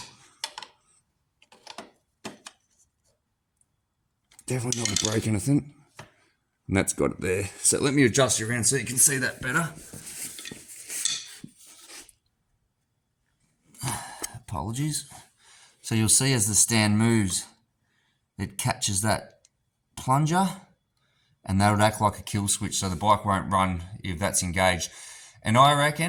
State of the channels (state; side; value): identical; both; correlation 1.00